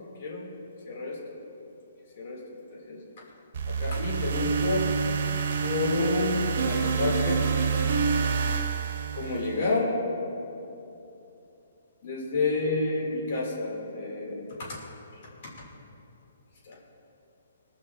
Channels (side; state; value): both; inverted; correlation -0.64